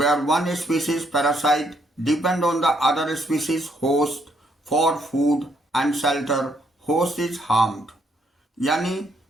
one species parasite depend on the other species host for food and shelter, host is harmed. यानी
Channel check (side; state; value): both; normal; correlation 0.72